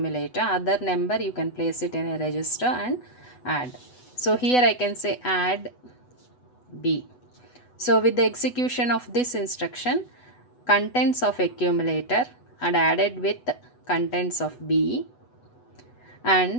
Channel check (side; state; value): right; late; 8.1 ms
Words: other number you can place it in a register and add. So here I can say add B. So with the execution of this instruction, contents of accumulator are added with contents of B